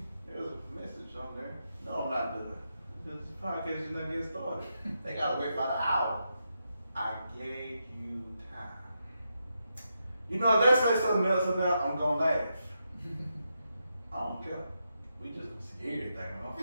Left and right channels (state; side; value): inverted; both; correlation -0.84